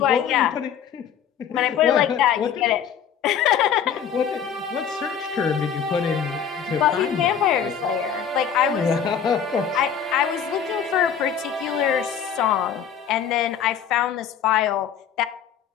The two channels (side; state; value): right; quieter; 8.0 dB